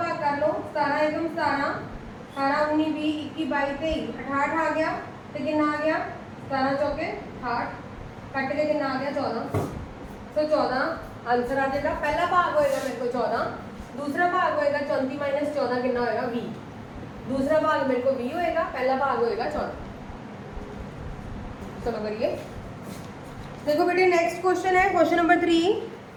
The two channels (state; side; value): identical; both; correlation 1.00